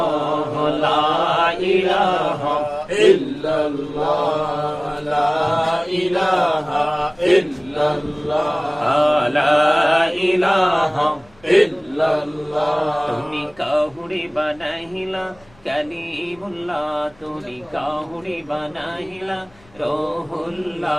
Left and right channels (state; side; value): noise; left; rumble, 29 dB below the sound